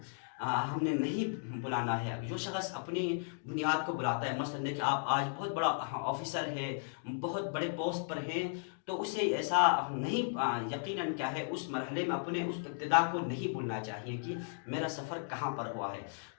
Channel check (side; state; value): right; silent; digital silence